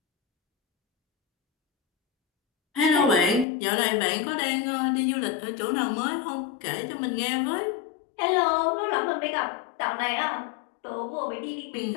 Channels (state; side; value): drops out; right; at 3.5 s